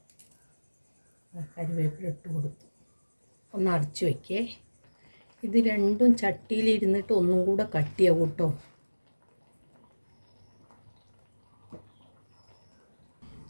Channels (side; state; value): both; inverted; correlation -1.00